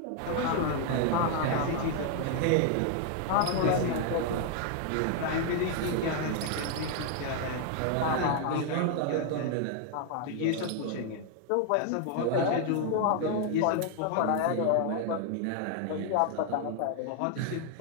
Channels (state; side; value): different; both; correlation 0.00